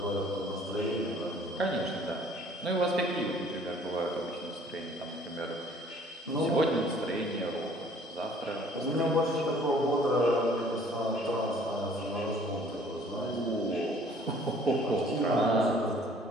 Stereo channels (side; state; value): both; normal; correlation 0.56